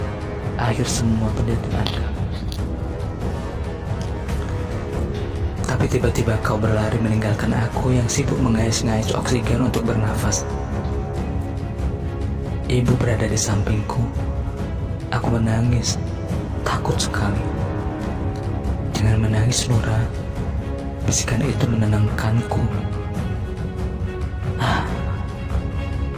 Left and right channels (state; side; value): identical; both; correlation 1.00